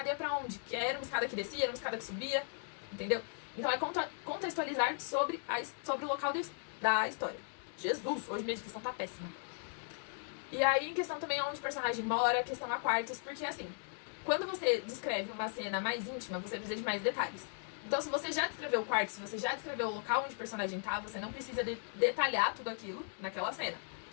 ia pra onde? Que era uma escada que descia, era uma escada que subia, entendeu? Então é contextualizar sobre o local da história. Jesus, hoje minha descrição tá péssima. E aí, em questão também onde o personagem mora, questão a quartos, porque assim, quando você descreve uma cena mais íntima, você precisa de mais detalhes. Então, se você já descreveu o quarto, se você já descreveu o local onde o personagem tá, você não precisa detalhar tudo aquilo naquela cena.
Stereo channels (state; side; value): silent; right; 53 dB below the other